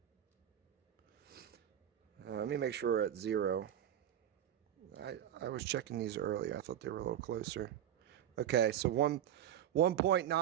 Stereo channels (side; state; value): left; quieter; 10.8 dB